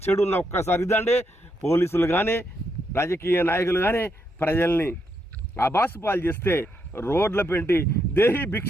చెడు ఉన్న ఒక్కసారి ఇదండి. పోలీసులు కానీ రాజకీయ నాయకులు కానీ ప్రజల్ని అబాసు పాలు చేస్తే రోడ్ల పెంటి దేహి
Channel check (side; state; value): both; normal; correlation 0.79